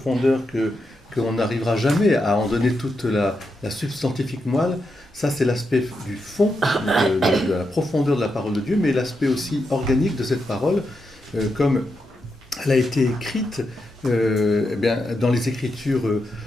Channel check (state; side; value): normal; both; correlation 0.85